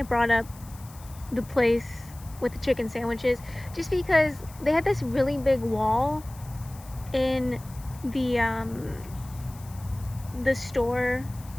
brought up the place with the chicken sandwiches, just because they had this really big wall in the store,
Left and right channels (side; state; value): left; noise; hiss, 21 dB below the sound